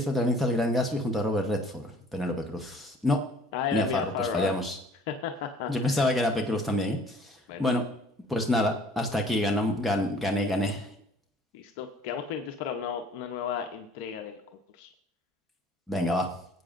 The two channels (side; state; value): both; normal; correlation 0.53